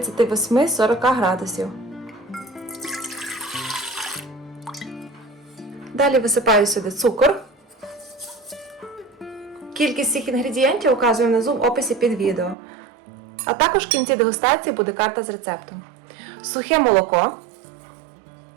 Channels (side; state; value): left; drops out; at 12.6 s